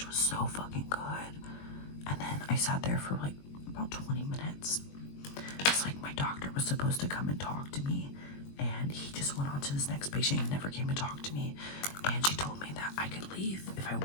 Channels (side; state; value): right; late; 21 ms